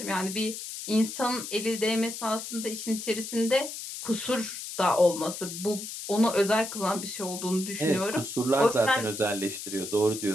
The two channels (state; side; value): noise; left; hiss, 8 dB below the sound